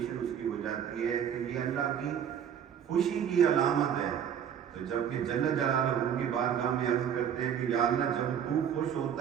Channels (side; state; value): left; quieter; 8.7 dB